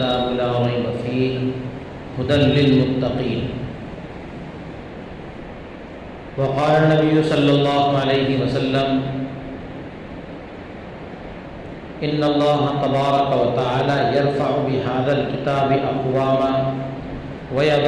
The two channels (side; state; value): both; identical; correlation 1.00